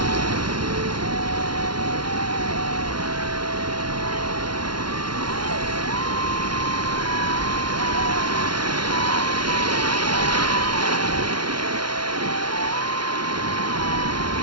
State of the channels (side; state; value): left; late; 0.72 ms